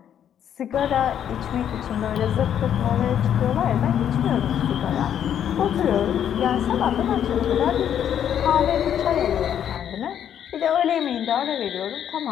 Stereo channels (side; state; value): right; quieter; 9.5 dB